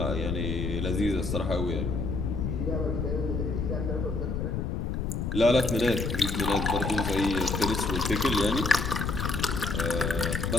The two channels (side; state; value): left; noise; rumble, 1 dB below the sound